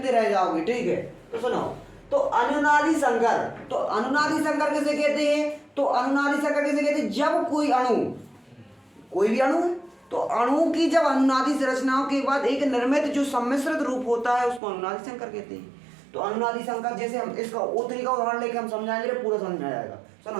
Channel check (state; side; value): drops out; left; at 14.6 s